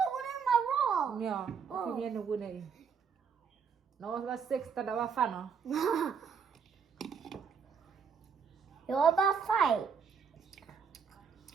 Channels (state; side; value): quieter; left; 6.4 dB